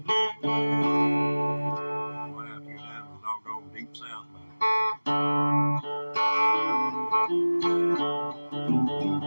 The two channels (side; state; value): both; inverted; correlation -1.00